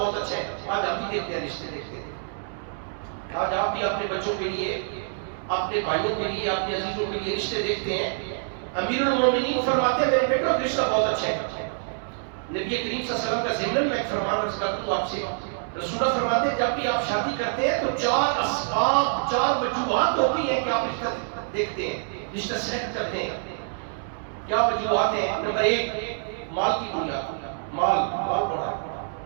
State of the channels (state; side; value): silent; left; 61 dB below the other